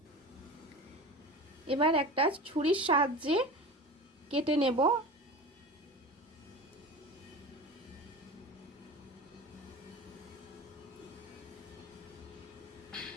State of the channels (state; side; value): normal; both; correlation 0.33